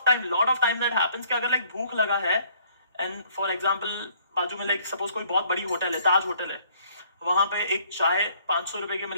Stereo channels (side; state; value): both; inverted; correlation -0.62